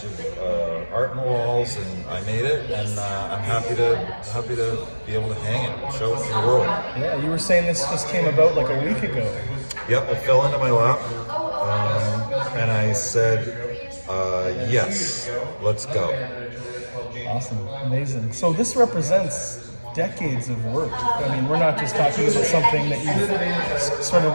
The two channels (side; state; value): both; inverted; correlation -1.00